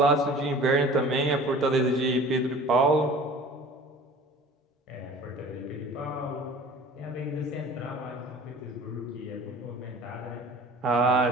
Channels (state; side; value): normal; both; correlation 0.44